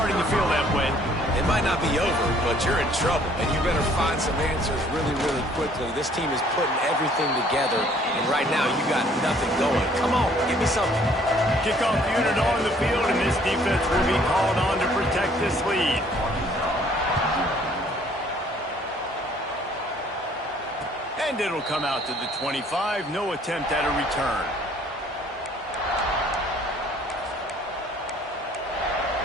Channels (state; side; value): normal; both; correlation 0.59